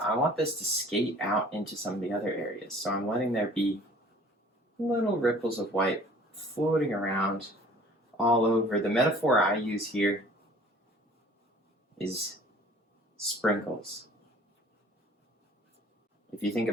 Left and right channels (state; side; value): normal; both; correlation 0.51